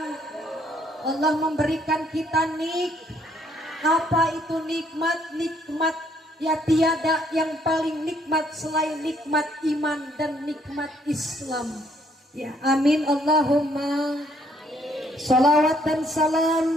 Allah memberikan kita apa itu nikmat? Nikmat ya tiada yang paling nikmat selain nikmat iman dan nikmat Islam. Ya, amin Allahumma. Salawat dan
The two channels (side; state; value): both; normal; correlation 0.67